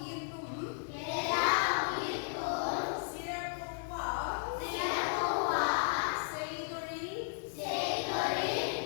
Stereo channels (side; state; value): right; silent; digital silence